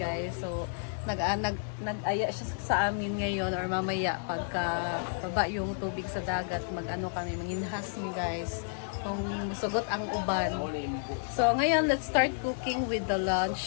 So, nag-aya siya sa amin ngayon or mamaya pagka baba yung tubig sa dagat, mag-ano kami, manginhas mi guys. Kung sugot ang uban. So, ngayon, let's start cooking with the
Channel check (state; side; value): silent; right; digital silence